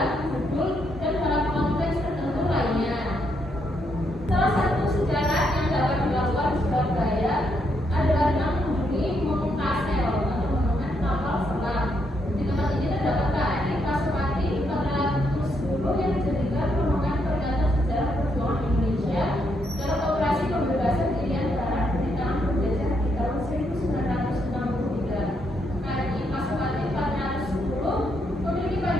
judul, dan dalam konteks tertentu lainnya. Salah satu sejarah yang dapat dilakukan di Surabaya adalah dengan mengunjungi Monumen Kastel atau Monumen Kapal Selam. Di tempat ini terdapat KRI Pasopati 410 yang dijadikan monumen peringatan sejarah perjuangan Indonesia dalam operasi pembebasan Irian Barat dari tangan penjajah di tahun 1963. KRI Pasopati 410 memiliki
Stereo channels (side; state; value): both; normal; correlation 0.77